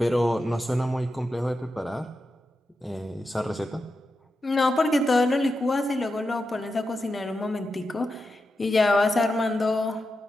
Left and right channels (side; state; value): both; normal; correlation 0.89